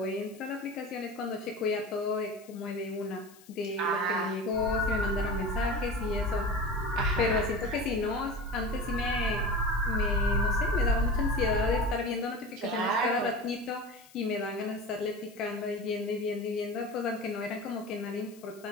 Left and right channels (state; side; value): noise; left; hiss, 24 dB below the sound